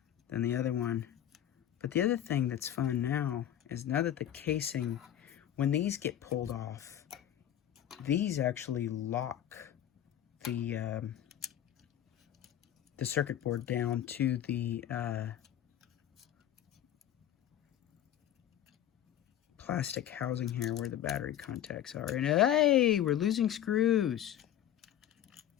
than the other one. But the other thing that's fun now is now that the casing, when these get pulled off, these actually lock the circuit board down to the plastic housing here where the battery contacts are. And hey, we're losing screws.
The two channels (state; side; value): quieter; right; 11.1 dB